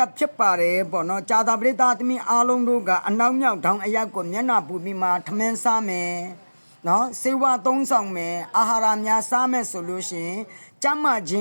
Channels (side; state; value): both; inverted; correlation -1.00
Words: က်ဖြစ်ပါတယ်ပေါ့နော်ကြာတာပရိသတ်သမီးအားလုံးတို့ကအနောက်မြောက်ထောင်အယက်ကိုမျက်နှာပူပြီးမှထမင်းစားမယ်နော်စေဝါသုံးဆောင်မယ်အာဟာရများစားမယ်ဆိုလို့ရှိရင်ကျမ်းမာခြင